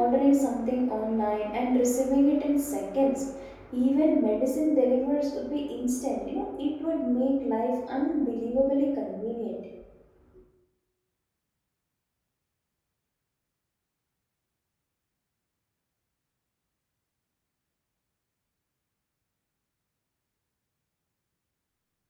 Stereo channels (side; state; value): both; identical; correlation 1.00